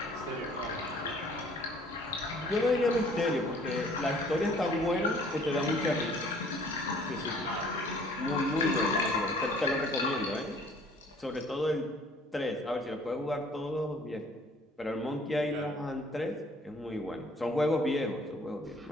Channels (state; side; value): normal; both; correlation 0.56